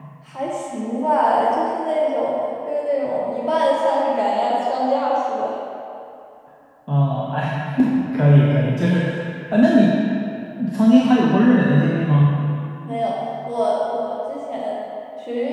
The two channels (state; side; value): identical; both; correlation 1.00